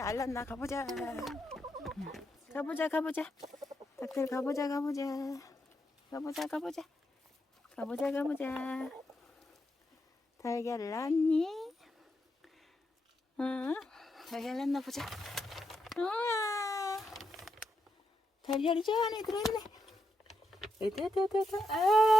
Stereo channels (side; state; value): both; normal; correlation 0.83